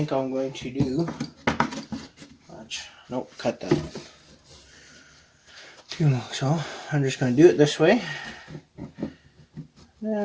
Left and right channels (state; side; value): identical; both; correlation 1.00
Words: I'm going to do. Nope, cut that. So I'm just going to do it this way.